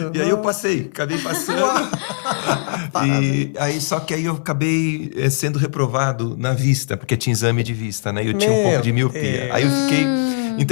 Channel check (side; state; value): right; silent; digital silence